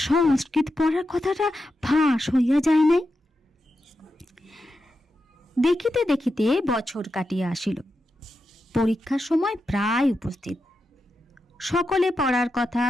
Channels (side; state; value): both; normal; correlation 0.88